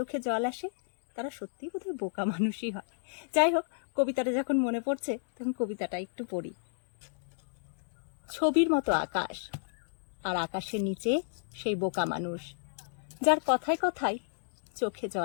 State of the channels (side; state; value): right; silent; digital silence